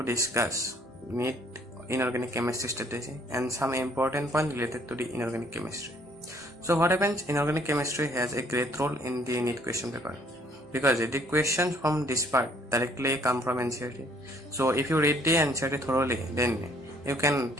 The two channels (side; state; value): both; normal; correlation 0.61